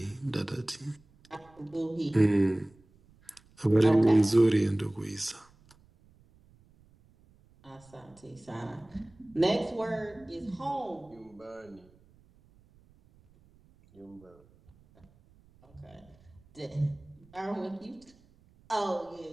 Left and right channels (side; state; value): right; noise; rumble, 29 dB below the sound